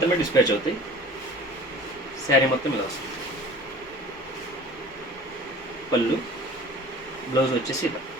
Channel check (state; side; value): normal; both; correlation 0.44